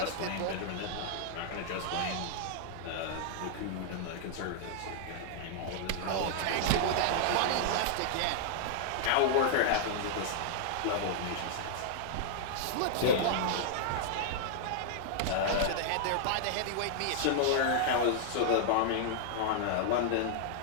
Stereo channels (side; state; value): both; different; correlation -0.01